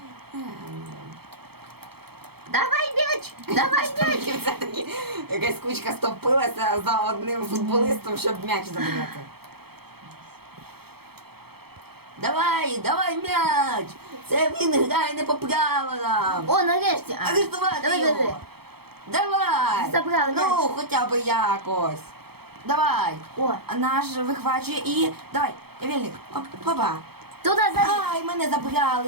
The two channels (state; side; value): late; left; 0.96 ms